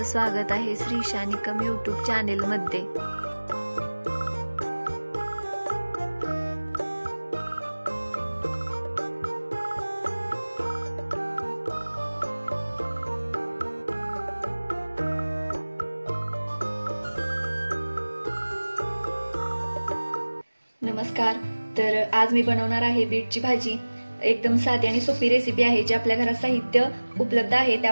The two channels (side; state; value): both; inverted; correlation -1.00